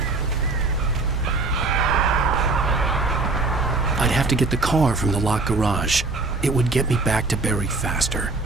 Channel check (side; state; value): left; quieter; 3.5 dB